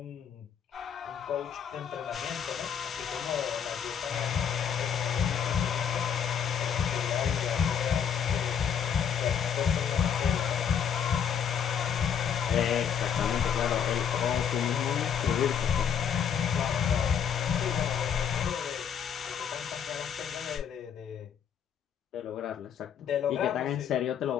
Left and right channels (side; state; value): right; quieter; 7.9 dB